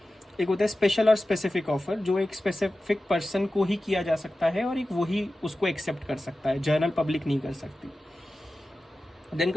एक होता है स्पेशल और स्पेसिफिक ऑफर, जो एक स्पेसिफिक पर्सन को ही किया जा सकता है और एक वही उसको एक्सेप्ट कर सकता है, जर्नल पब्लिक नहीं कर सकती। Then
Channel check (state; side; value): normal; both; correlation 0.95